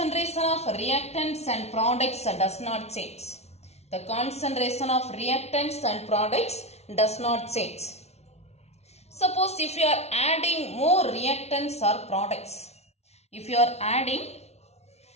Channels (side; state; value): right; late; 0.31 ms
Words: of reactants and products does not change. The concentration of reactants and products does not change. Suppose if you are adding more reactants or products,